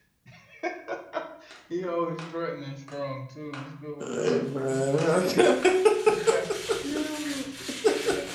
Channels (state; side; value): identical; both; correlation 1.00